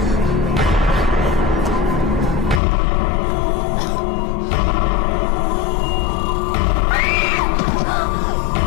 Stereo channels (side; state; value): right; drops out; at 2.6 s